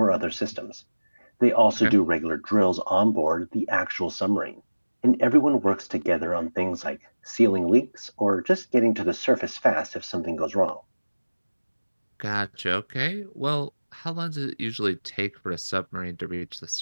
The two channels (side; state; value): both; inverted; correlation -1.00